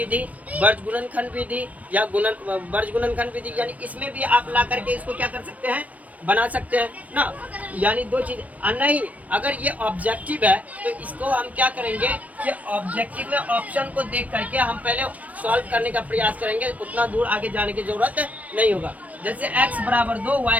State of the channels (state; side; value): late; left; 0.070 ms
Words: वर्ज गुणनखंड विधि या वर्ज गुणनखंड विधि, यानी इसमें भी आप ला करके इसको क्या कर सकते हैं? बना सकते हैं ना। यानी दो चीज नहीं, अगर ये ऑब्जेक्टिव है तो इसको हम क्या करेंगे कि ऑब्जेक्टिव में ऑप्शन को देख करके हम पहले सॉल्व करने का प्रयास करेंगे, उतना दूर आगे जाने की जरूरत नहीं होगा। जैसे x बराबर 2